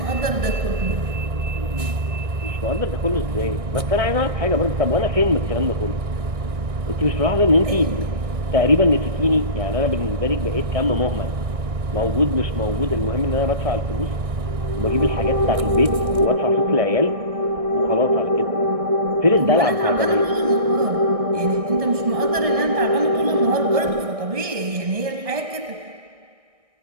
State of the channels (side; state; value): left; late; 1.6 ms